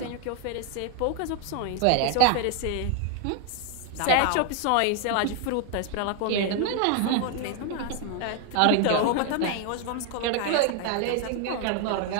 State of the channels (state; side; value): different; both; correlation 0.01